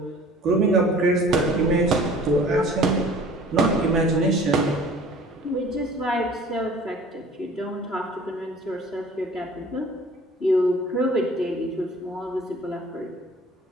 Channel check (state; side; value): normal; both; correlation 0.48